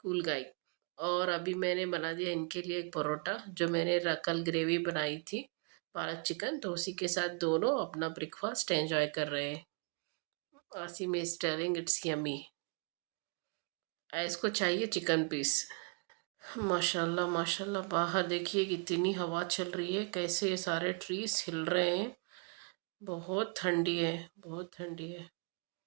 کول گائی۔ اور ابھی میں نے بنا دیا ان کے لیے ایک پروٹا، جو میں نے کل گریوی بنائی تھی پالک چکن، تو اسی کے ساتھ دونوں اپنا بریک فاسٹ انجوائے کر رہے ہیں۔ عاصم از ٹیلنگ اٹس یمی، اس کو چاہیے چکن پیس۔ ماشاء اللہ ماشاء اللہ، باہر دیکھیے کتنی ہوا چل رہی ہے، کیسے یہ سارے ٹریز ہل رہے ہیں۔ بہت ٹھنڈی ہے، بہت ٹھنڈی ہے۔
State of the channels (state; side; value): quieter; left; 36.5 dB